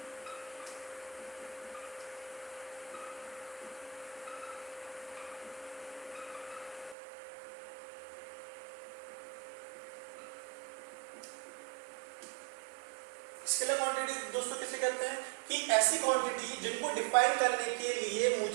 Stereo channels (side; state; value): left; drops out; at 7.0 s